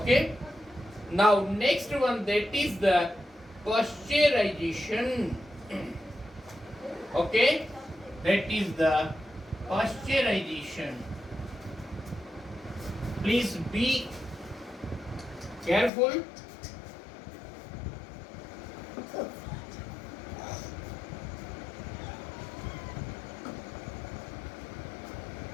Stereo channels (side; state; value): right; drops out; at 15.9 s